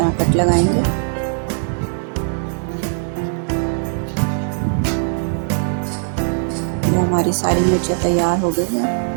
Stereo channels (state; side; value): silent; left; 62 dB below the other